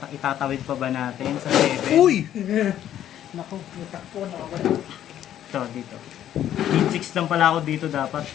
itatawid pa ba natin sa 7? Uy! Naku, natakpo na ako. Ito, dito. Need 6 lang pala ako dito dapat.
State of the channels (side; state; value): right; quieter; 11.2 dB